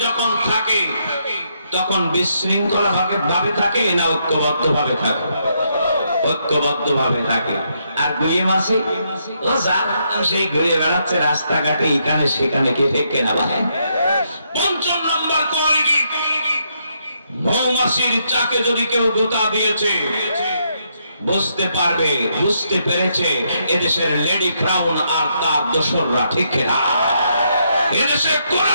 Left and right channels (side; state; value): both; inverted; correlation -0.77